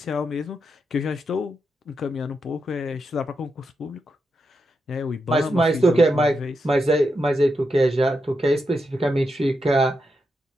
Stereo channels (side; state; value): both; normal; correlation 0.85